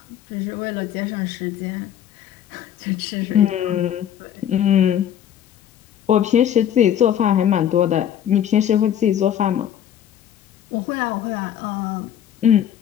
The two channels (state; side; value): quieter; right; 10.0 dB